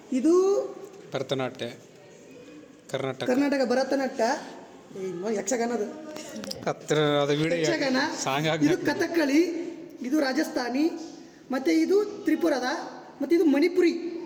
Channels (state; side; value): identical; both; correlation 1.00